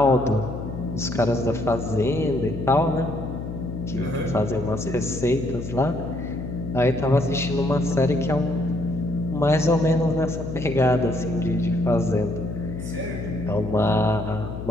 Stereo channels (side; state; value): left; noise; hum, 8 dB below the sound